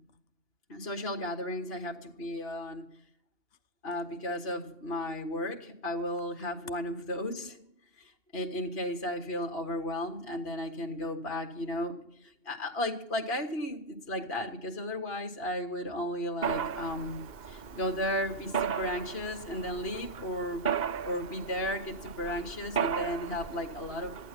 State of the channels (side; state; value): right; late; 2.8 ms